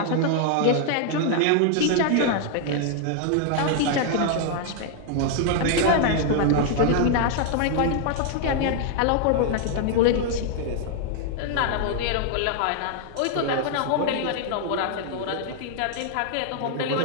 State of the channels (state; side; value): different; both; correlation 0.00